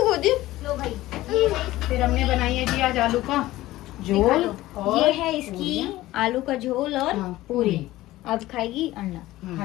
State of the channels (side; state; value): right; quieter; 16.7 dB